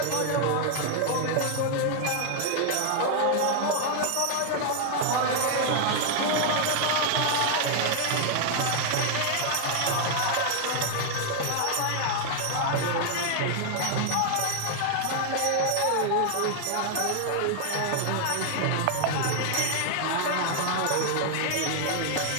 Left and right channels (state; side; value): different; both; correlation 0.00